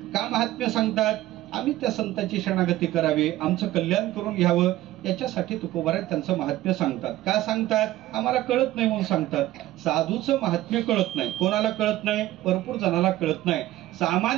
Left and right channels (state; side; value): quieter; left; 15.4 dB